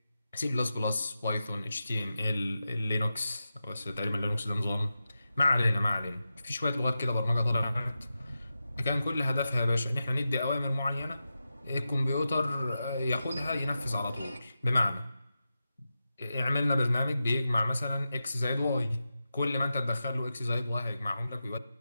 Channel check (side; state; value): both; inverted; correlation -0.91